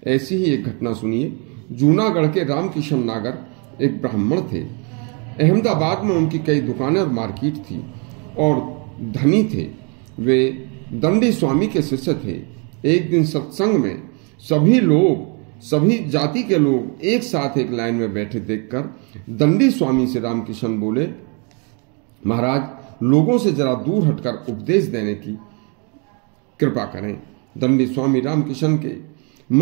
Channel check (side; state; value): left; quieter; 35.2 dB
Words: ऐसी ही एक घटना सुनिए। जूनागढ़ के रामकिशन नागर एक ब्राह्मण थे। अहमदाबाद में उनकी कई दुकानें और मार्केट थी और धनी थे। वे दंडी स्वामी के शिष्य थे। एक दिन सत्संग में सभी जाति के लोग एक साथ एक लाइन में बैठे देखकर दंडी स्वामी से रामकिशन बोले, महाराज, लोगों से जरा दूर हटकर उपदेश देने की कृपा करें। दंडी स्वामी रामकिशन के